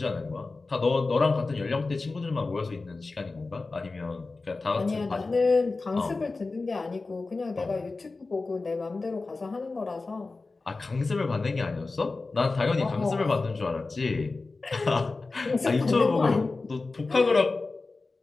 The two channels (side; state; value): right; quieter; 3.7 dB